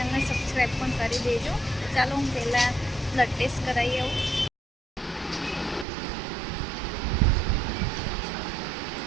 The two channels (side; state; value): left; drops out; at 5.9 s